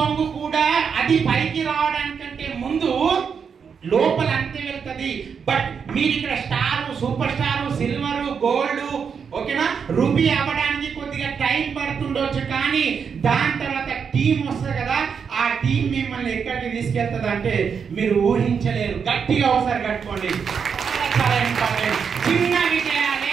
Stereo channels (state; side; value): quieter; left; 6.5 dB